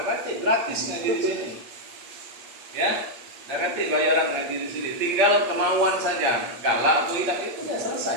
kasih, gratis ngaji di sini. Ya, tak kasih bayaran ngaji di sini. Tinggal kemauan saja. Galak atau tidak itu sudah selesai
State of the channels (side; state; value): left; late; 8.4 ms